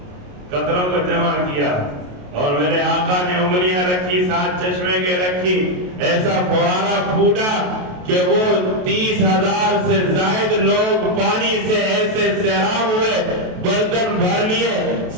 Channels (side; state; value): left; late; 28 ms